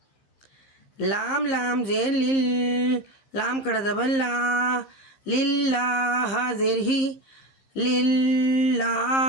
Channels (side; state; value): right; late; 15 ms